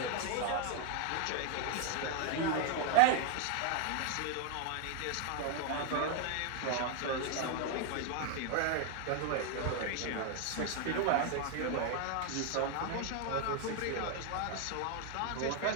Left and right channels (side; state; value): both; different; correlation 0.00